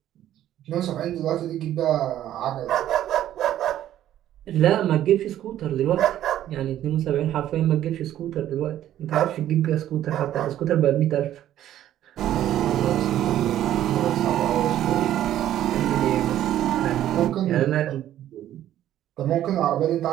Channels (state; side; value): quieter; left; 12.2 dB